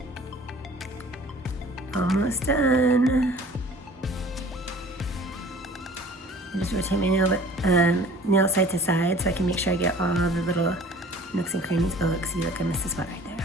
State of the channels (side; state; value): both; normal; correlation 0.48